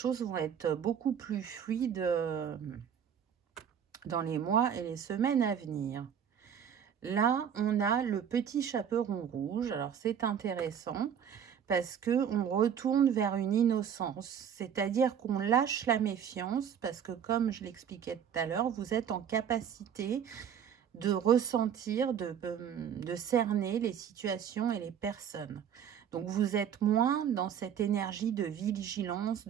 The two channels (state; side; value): quieter; left; 8.4 dB